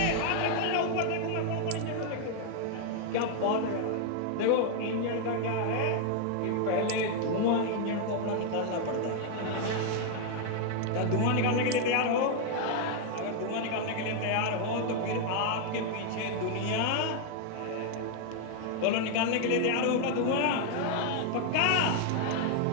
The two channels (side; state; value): both; different; correlation 0.00